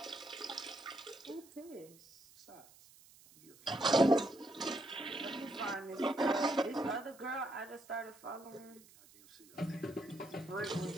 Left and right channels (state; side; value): noise; right; hiss, 24 dB below the sound